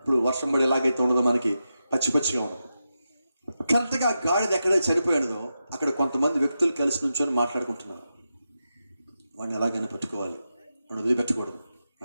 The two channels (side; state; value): both; inverted; correlation -0.89